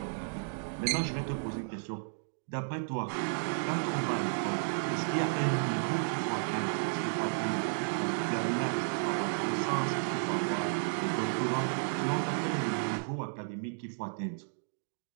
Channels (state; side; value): silent; left; digital silence